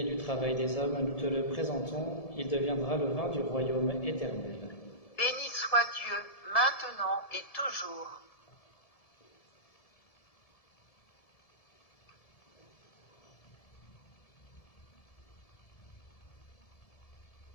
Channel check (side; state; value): right; late; 1.7 ms